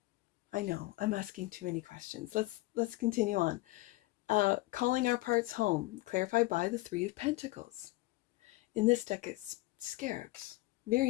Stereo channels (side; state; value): right; quieter; 20.4 dB